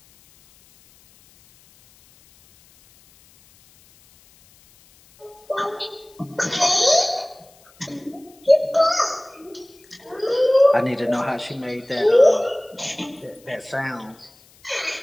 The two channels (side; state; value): left; noise; hiss, 29 dB below the sound